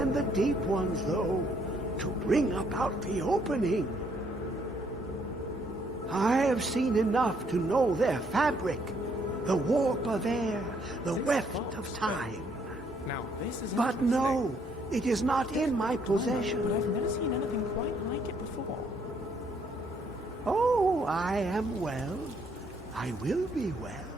the deep ones, though, to bring about the opening. I have seen enough to know their fabric, the warp of air, the weft of time. Now, this is but no, it is not in my possession. But I've never seen anything quite like it before. Oh, I am well. I will be well.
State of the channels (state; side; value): normal; both; correlation 0.69